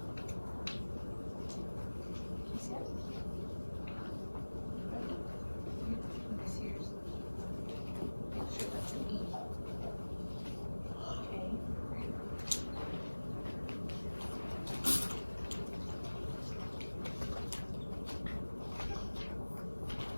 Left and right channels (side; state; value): both; inverted; correlation -1.00